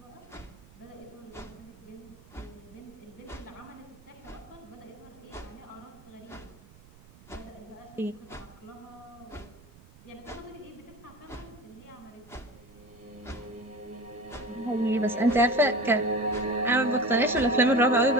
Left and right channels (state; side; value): noise; right; rumble, 23 dB below the sound